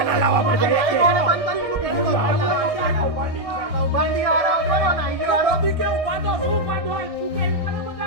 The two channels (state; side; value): late; left; 1.6 ms